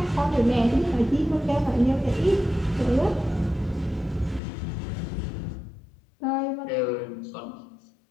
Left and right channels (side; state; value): right; drops out; at 4.4 s